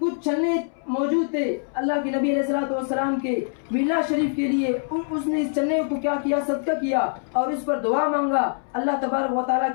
چنے موجود تھے اللہ کے نبی علیہ الصلوۃ والسلام کے میلاد شریف کے لیے. اس نے اس چنے کو کیا کیا؟ صدقہ کیا اور اس پر دعا مانگا، اللہ تبارک و تعالیٰ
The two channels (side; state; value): right; silent; 63 dB below the other